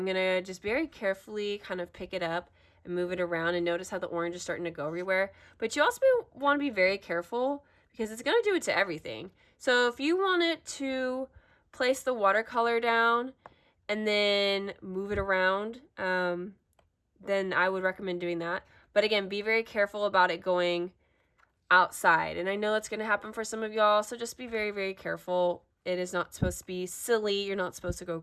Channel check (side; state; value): both; identical; correlation 1.00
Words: going to just very carefully kind of pick it up and move it around, and notice how the orange is starting to go everywhere. But you also want to be very careful because it's going to do it to everything. So if you want it to place the watercolor down and then move it around, then I would recommend doing that. But again, be very careful about it going outside. And I know that's going to happen for some of y'all, so just be very, very careful. It is not supposed to be silly. You're not supposed to go